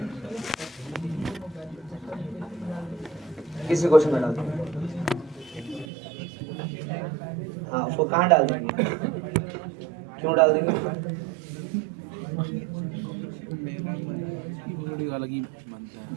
किसी क्वेश्चन में डाल देंगे, हाँ उसको कहाँ डाल देंगे, क्यों डाल देंगे, थोड़ी अलग ही बनता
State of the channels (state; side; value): drops out; left; at 5.9 s